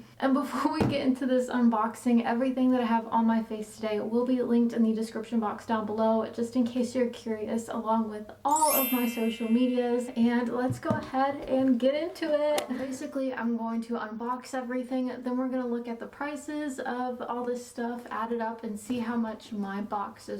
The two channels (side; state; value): both; identical; correlation 1.00